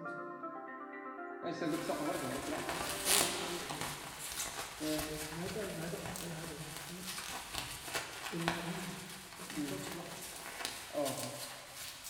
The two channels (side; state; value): both; identical; correlation 1.00